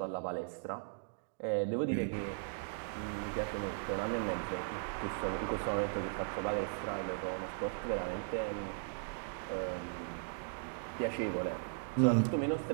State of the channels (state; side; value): silent; left; digital silence